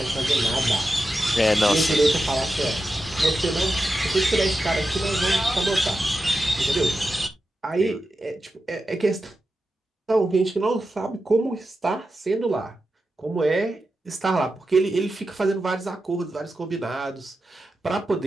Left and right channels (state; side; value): normal; both; correlation 0.90